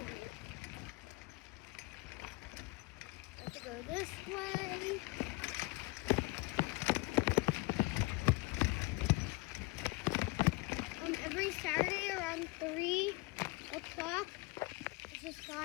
I have to go this way. Every Saturday around 3 o'clock, there's this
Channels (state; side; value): quieter; right; 24.3 dB